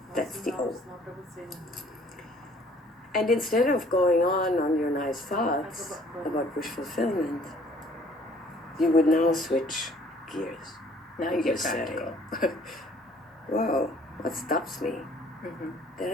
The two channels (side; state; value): both; normal; correlation 0.58